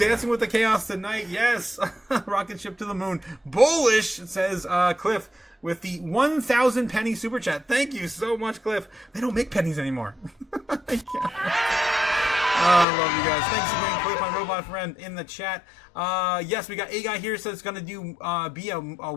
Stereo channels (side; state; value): right; drops out; at 12.9 s